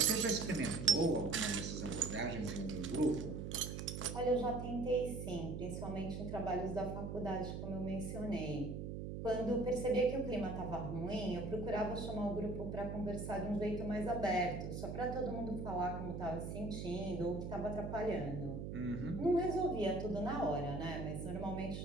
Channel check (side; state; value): right; noise; hum, 5 dB below the sound